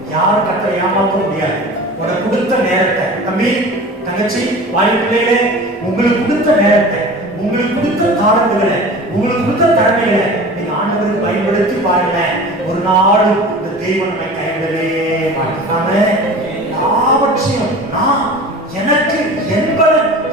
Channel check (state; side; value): normal; both; correlation 0.38